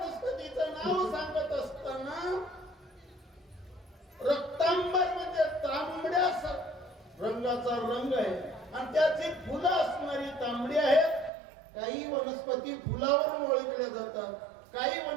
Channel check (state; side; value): drops out; left; at 11.3 s